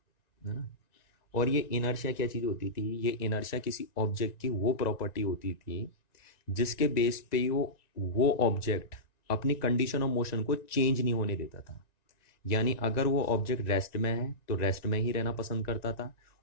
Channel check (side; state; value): right; late; 1.9 ms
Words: है ना। और ये इनर्शिया क्या चीज़ होती थी? ये इनर्शिया किसी ऑब्जेक्ट की वो प्रॉपर्टी होती थी जिसके बेस पे वो ऑब्जेक्ट अपनी कंडीशन ऑफ मोशन को चेंज नहीं होने देता था। यानी अगर वो ऑब्जेक्ट रेस्ट में है तो रेस्ट में ही रहना पसंद करता था,